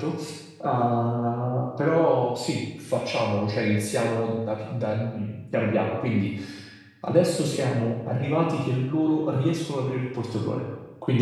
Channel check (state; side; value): identical; both; correlation 1.00